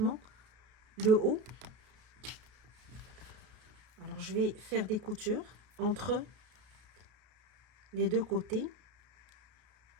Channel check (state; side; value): late; left; 33 ms